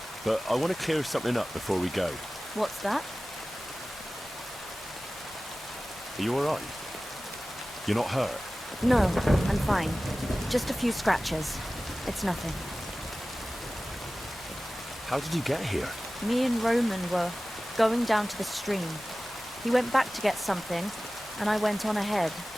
but I want to clear something up before we go. What's that? Are you alright? You're not hurt? No, I'm fine. Just a few scratches. It's nothing. How did you get here? Me and Roman were going down to the stream. He went back to get something, and I went on ahead.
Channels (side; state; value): both; normal; correlation 0.97